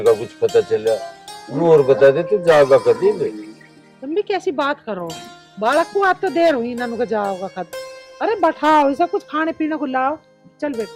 का कुछ पता चला, और बता दे तू जाएगा कभी भी? तुम भी कैसी बात करो, बालक को आज तो देर हुई, नानू का जाओगा कद। अरे बैठाओ, ऐसा कुछ खाने पीने को लाओ। चल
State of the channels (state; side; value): identical; both; correlation 1.00